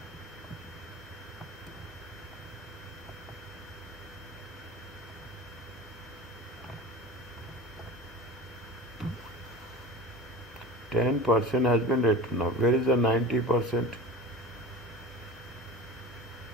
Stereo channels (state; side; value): normal; both; correlation 0.34